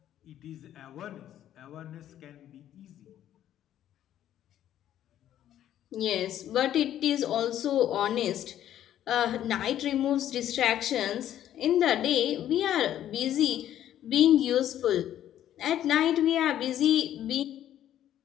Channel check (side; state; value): right; quieter; 11.5 dB